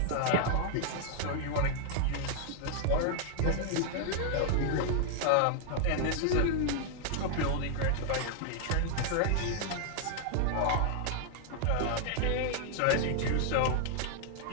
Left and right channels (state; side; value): different; both; correlation 0.00